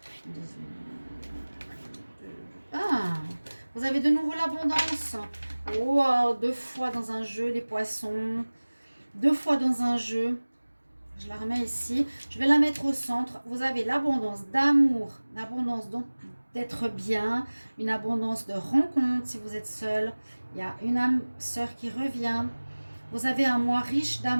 Ah, vous avez de nouveau l'abondance. Wow, 2 fois dans un jeu, les poissons. 2 fois dans un jeu. Je la remets ici. Je vais la mettre au centre. Vous avez l'abondance d'amour, l'abondance d'être bien, une abondance de rencontres si vous êtes seul. Il y a une âme sœur qui revient. Vous avez un mois riche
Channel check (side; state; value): both; inverted; correlation -1.00